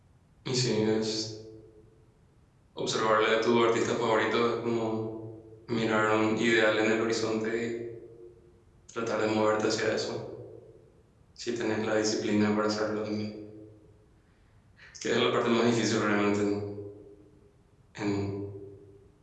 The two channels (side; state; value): both; identical; correlation 1.00